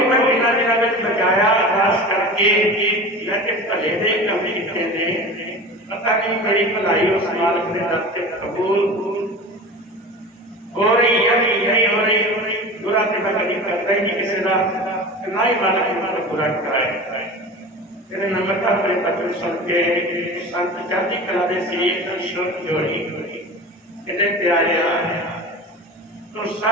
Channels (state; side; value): normal; both; correlation 0.33